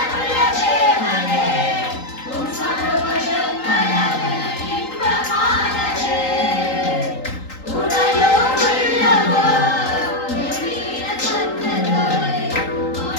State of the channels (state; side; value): late; right; 3.8 ms